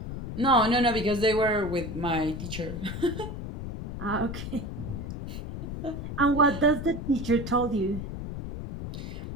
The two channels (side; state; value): left; noise; rumble, 7 dB below the sound